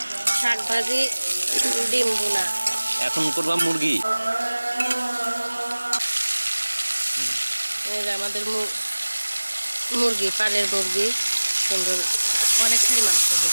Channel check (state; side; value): inverted; both; correlation -1.00